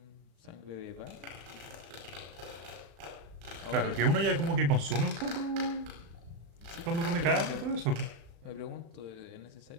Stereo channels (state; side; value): late; left; 36 ms